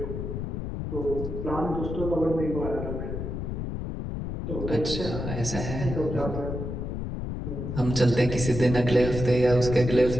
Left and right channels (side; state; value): left; noise; rumble, 5 dB below the sound